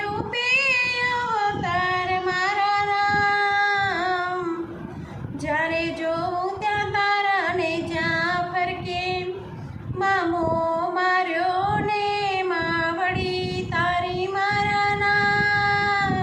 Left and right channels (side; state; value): both; identical; correlation 1.00